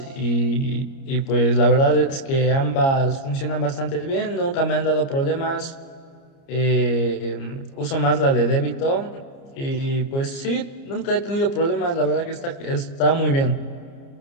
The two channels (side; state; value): right; late; 29 ms